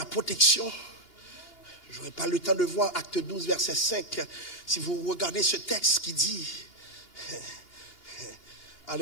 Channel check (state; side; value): late; right; 2.8 ms